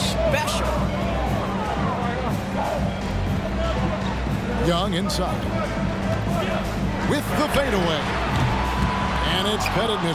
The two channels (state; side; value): identical; both; correlation 1.00